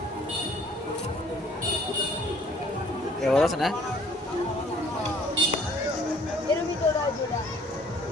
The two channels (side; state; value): both; normal; correlation 0.57